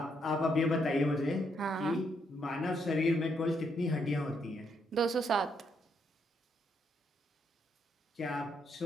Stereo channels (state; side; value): normal; both; correlation 0.75